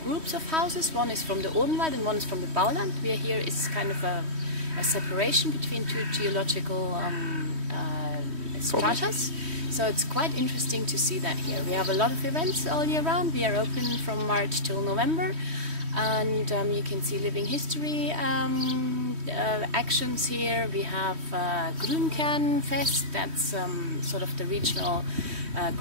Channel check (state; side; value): late; left; 3.1 ms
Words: groups of houses. One is from the Odenwald and one is from the Bauland. We are here is kind of a separation between two geological stratas. So it's quite interesting to see that here. We have a lot of events all year round. We are open from March till November, and you can see living history actions here. We have Grünkernfest, that's sort of the regional